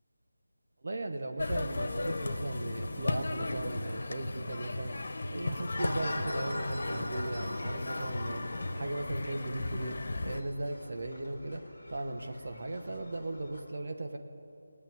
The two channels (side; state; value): both; inverted; correlation -0.94